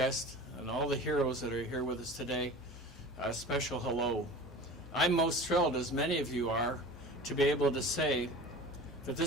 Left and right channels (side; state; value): both; normal; correlation 0.37